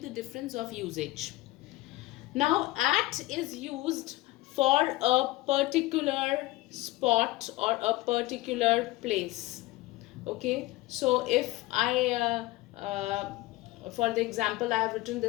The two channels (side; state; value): right; quieter; 19.1 dB